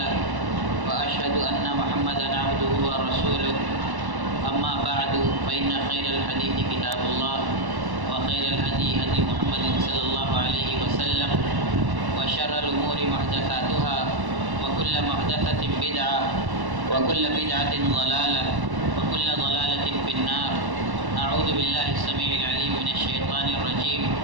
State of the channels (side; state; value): left; late; 1.1 ms